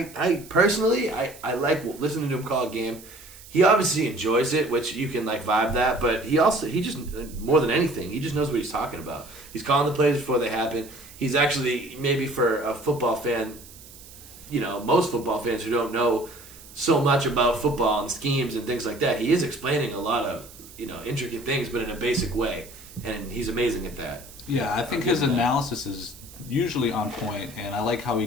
I personally, I like listening to him call a game. He obviously enjoys it, which you can vibe that, but he just, more than anything, he just knows what he's talking about. He's calling the plays before they happen. He's actually, maybe for a football fan, most football fans who don't know so much about football and schemes and things like that. He is explaining a lot of intricate things, but in a basic way, and he's amazing at that. Yeah, I think his analysis is usually on point, and I like how he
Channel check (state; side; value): noise; right; hiss, 19 dB below the sound